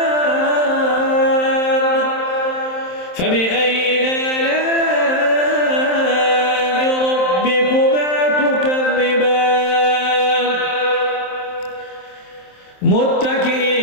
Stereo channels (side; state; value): right; late; 27 ms